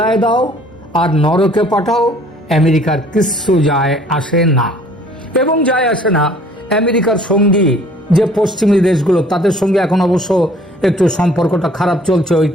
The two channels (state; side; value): normal; both; correlation 0.55